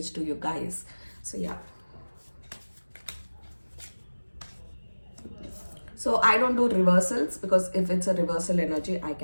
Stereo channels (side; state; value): both; inverted; correlation -1.00